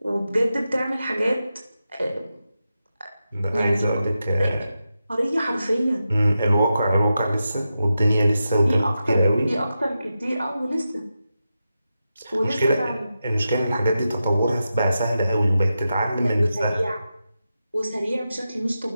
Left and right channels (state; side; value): inverted; both; correlation -0.90